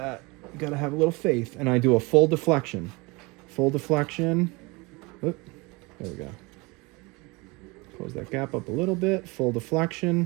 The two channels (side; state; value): left; quieter; 25.8 dB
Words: You gotta have a little faith. And I do a full deflection. Full deflection. Oop, there we go. Close that gap up a little bit. Full